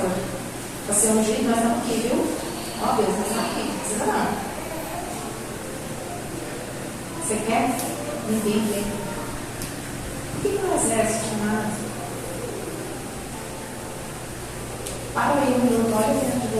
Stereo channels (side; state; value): both; identical; correlation 1.00